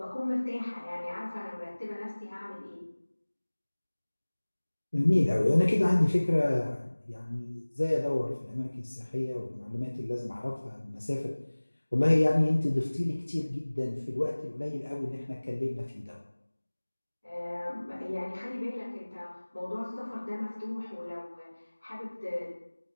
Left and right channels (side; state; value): both; inverted; correlation -1.00